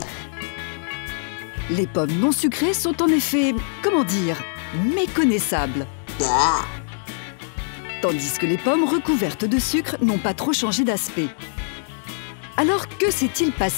Les pommes non sucrées sont en effet, comment dire, méconnaissables. Tandis que les pommes recouvertes de sucre n'ont pas trop changé d'aspect. Alors que s'est-il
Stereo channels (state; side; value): silent; right; 64 dB below the other